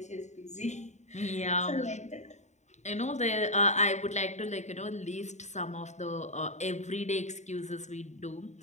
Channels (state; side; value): late; right; 0.34 ms